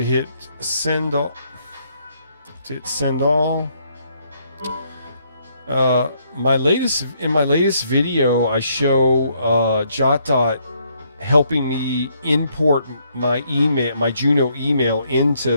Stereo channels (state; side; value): inverted; both; correlation -0.71